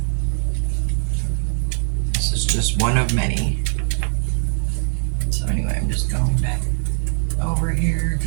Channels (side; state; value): left; silent; 61 dB below the other